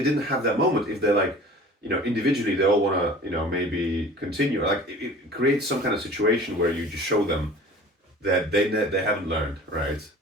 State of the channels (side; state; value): both; normal; correlation 0.43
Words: didn't have that moment, if they're like, individually they all want to, maybe continue. Like it creates some kind of situation where you just show them that they haven't learned, right?